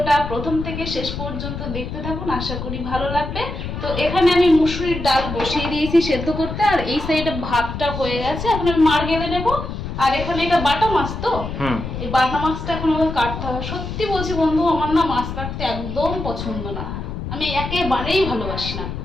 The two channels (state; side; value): noise; left; rumble, 6 dB below the sound